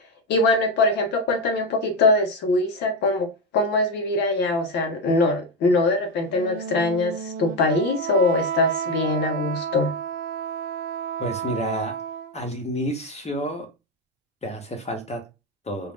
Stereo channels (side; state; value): both; normal; correlation 0.11